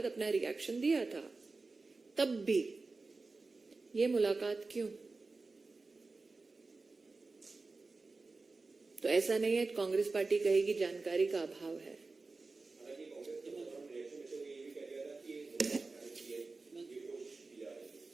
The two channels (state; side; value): quieter; left; 3.7 dB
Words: अपना रिएक्शन दिया था। तब भी ये मुलाकात क्यों? तो ऐसा नहीं है कांग्रेस पार्टी कहेगी जानकारी का अभाव है।